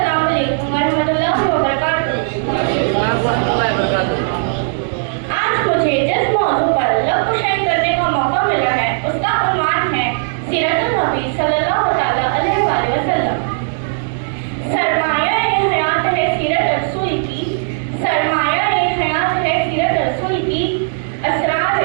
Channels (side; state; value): left; silent; digital silence